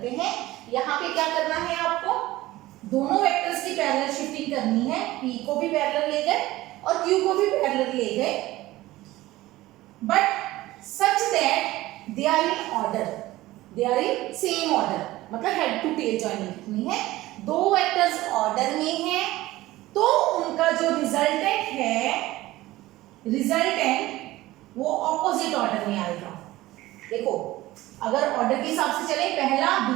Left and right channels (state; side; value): quieter; left; 17.4 dB